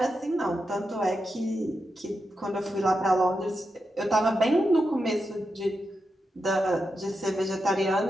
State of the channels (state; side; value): normal; both; correlation 0.87